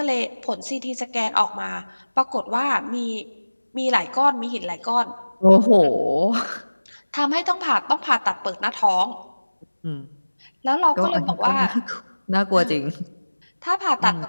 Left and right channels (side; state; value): both; inverted; correlation -1.00